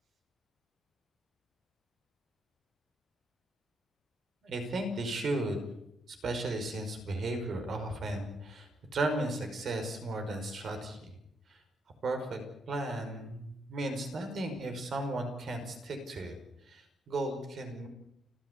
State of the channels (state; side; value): normal; both; correlation 0.76